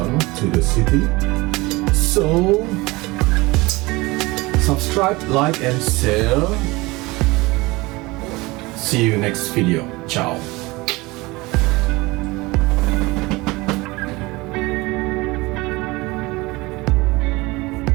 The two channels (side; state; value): left; quieter; 22.5 dB